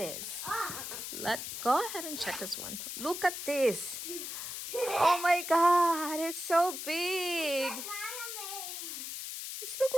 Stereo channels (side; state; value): left; noise; hiss, 6 dB below the sound